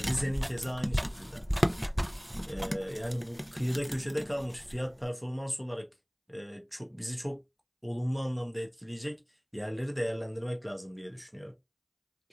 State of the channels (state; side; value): identical; both; correlation 1.00